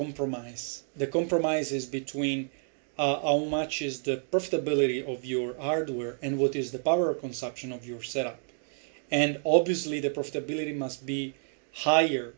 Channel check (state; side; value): silent; left; 58 dB below the other